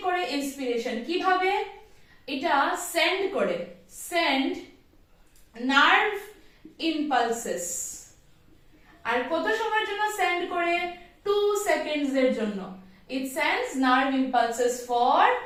করে ইন্সপিরেশন কিভাবে এটা সেন্ড নার্ভ ইম্পালসেস আর কত সময়ের জন্য সেন্ড করে 2 সেকেন্ডস এর জন্য it sends nerve impulses for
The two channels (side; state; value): both; identical; correlation 1.00